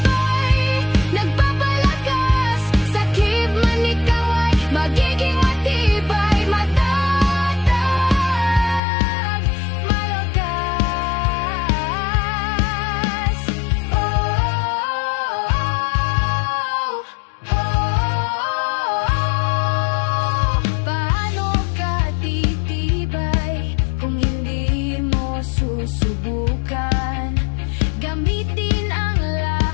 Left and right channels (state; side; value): drops out; right; at 8.8 s